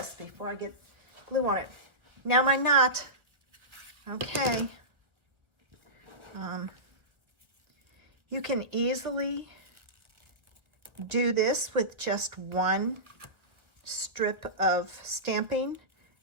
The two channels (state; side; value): late; left; 1.2 ms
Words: before I get glue on it. Now my knot. Okay. You can easily do this with just one strip of stamping